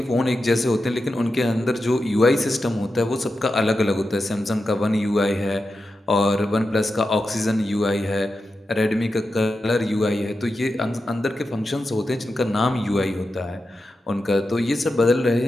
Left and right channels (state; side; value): normal; both; correlation 0.90